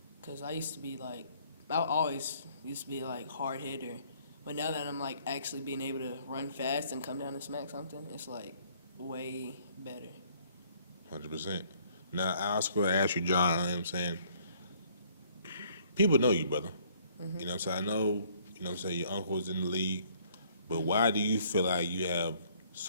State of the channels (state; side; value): inverted; both; correlation -0.62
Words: Because I used to be, like, I always used to be, like, hard hitter. But now that I'm, like, actually being able to run fast and come down and smack something, it's, like, way better. 100%. Now, I was going to ask you, John, you know what I'm saying? People know you, brother. Mm-hmm. You know what I'm saying? I know, you know what I'm saying, your uncle's in the league. But why do you feel like you have